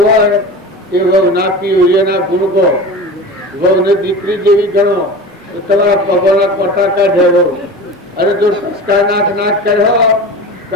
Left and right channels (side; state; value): both; normal; correlation 0.32